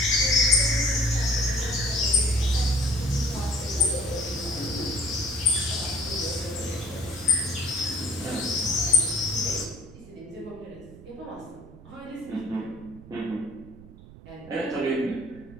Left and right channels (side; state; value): right; noise; rumble, 19 dB below the sound